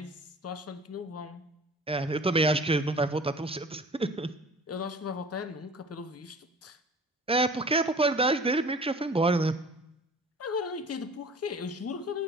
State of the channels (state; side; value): normal; both; correlation 0.44